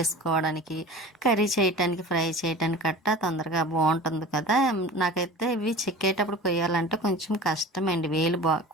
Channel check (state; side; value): normal; both; correlation 0.38